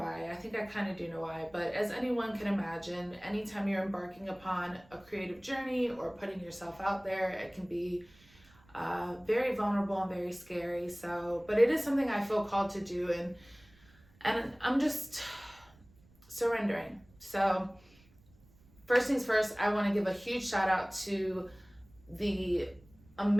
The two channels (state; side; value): noise; right; rumble, 28 dB below the sound